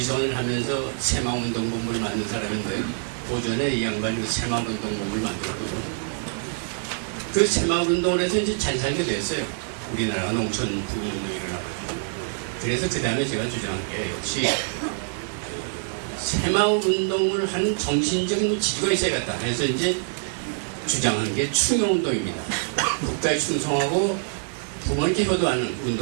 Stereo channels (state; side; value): silent; left; digital silence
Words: 하면서 새마을운동본부를 만든 사람인데 오전에 이 양반이 새마을운동본부를 만들었거든요. 그 새마을운동을 해서 이제 잘 살게 됐어요. 우리나라가 농촌 부흥운동이 일어나거든요. 그래서 그 다음에 제가 주장한 게 역시 새마을운동을 하는 정신적인 지주가 있어야겠다. 그래서 이제 주장하는 게 충용운동입니다. 국가에 충성하고 부모님께 효도하는